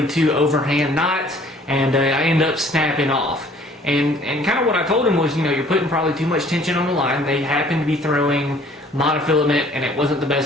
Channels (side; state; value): both; normal; correlation 0.56